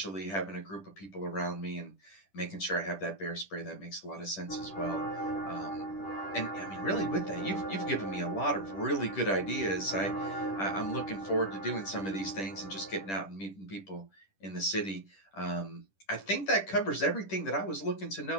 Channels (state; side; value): late; right; 10 ms